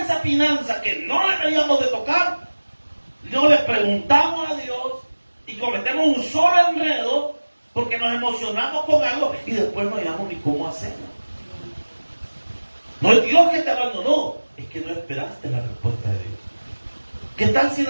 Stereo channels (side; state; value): both; inverted; correlation -1.00